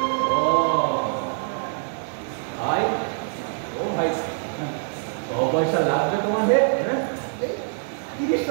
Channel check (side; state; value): left; silent; digital silence